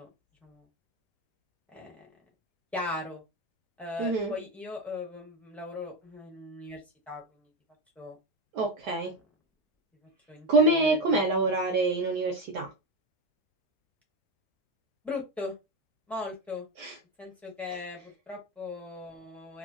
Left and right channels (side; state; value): both; normal; correlation 0.15